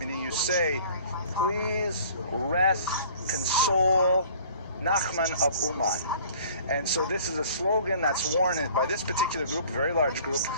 you say, please rest, console, Nachman of Uman. And so this is a slogan that's worn by this particular group, a very large group.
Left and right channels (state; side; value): inverted; both; correlation -0.50